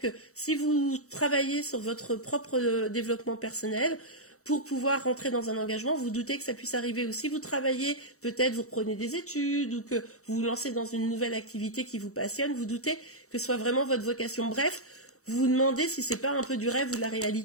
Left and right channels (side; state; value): right; late; 0.64 ms